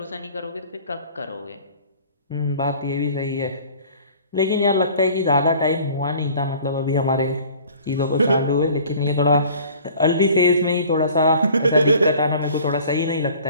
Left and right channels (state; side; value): inverted; both; correlation -0.49